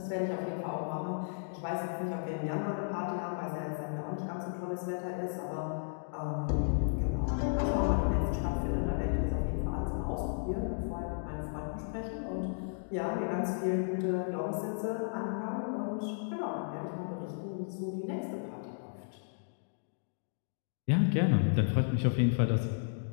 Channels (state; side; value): silent; right; digital silence